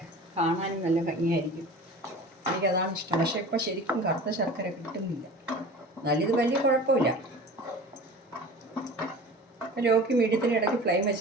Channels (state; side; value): normal; both; correlation 0.39